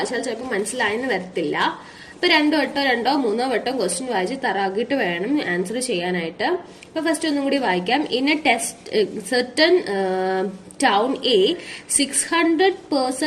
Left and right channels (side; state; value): both; identical; correlation 1.00